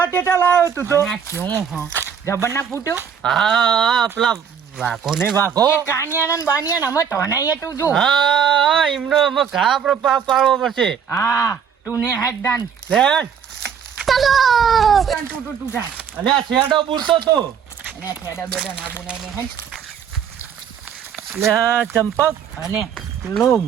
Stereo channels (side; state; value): left; quieter; 7.6 dB